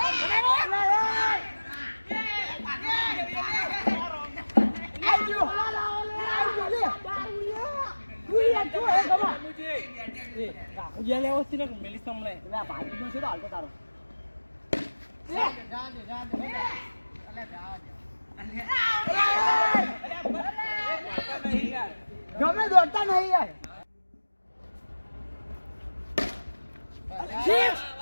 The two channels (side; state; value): both; inverted; correlation -1.00